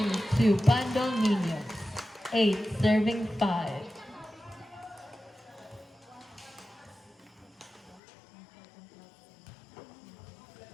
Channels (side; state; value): right; drops out; at 8.0 s